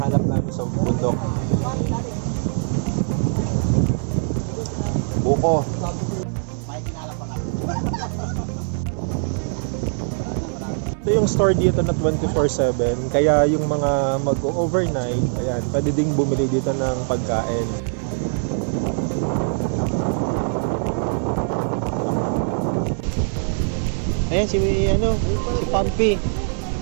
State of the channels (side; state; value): left; silent; digital silence